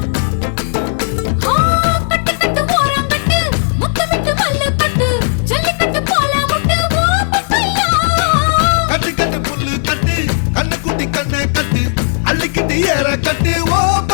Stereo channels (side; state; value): right; silent; digital silence